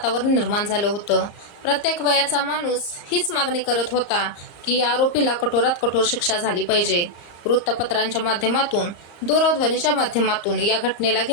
निर्माण झालं होतं. प्रत्येक वयाचा माणूस हीच मागणी करत होता की या आरोपीला कठोरात कठोर शिक्षा झाली पाहिजे. वृत्तपत्रांच्या माध्यमातून, दूरध्वनीच्या माध्यमातून या घटनेला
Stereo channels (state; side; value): late; right; 34 ms